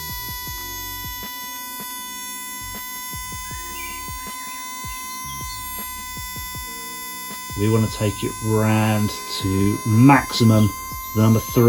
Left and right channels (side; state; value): both; identical; correlation 1.00